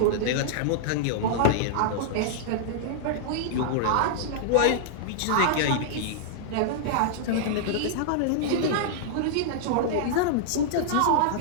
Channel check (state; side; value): different; both; correlation -0.01